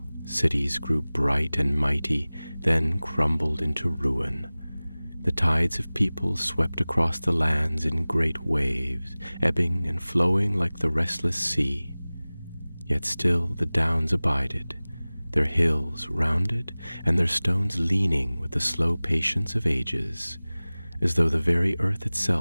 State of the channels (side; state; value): both; inverted; correlation -0.99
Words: cities grew bright and mighty, then crumbled into ruin. The tides of people swept across the lands in great waves, ebbing and flowing like the restless sea. Yet still the Downs abided, their hills rounded and their stones leaning with the slow patience of ages, as though the very earth